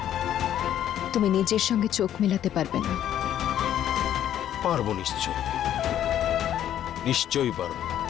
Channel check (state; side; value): quieter; right; 11.0 dB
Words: তুমি নিজের সঙ্গে চোখ মেলাতে পারবে না। পারবো, নিশ্চয়ই পারবো।